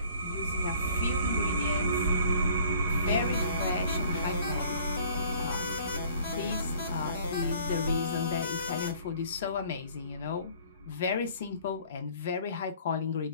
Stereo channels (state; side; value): inverted; both; correlation -0.54